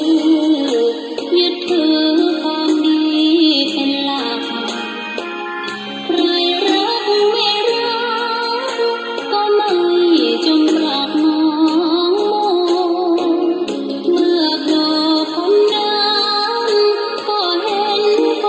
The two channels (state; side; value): identical; both; correlation 1.00